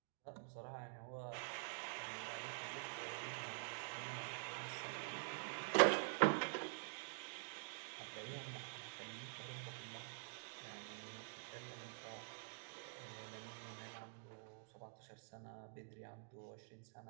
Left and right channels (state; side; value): silent; left; digital silence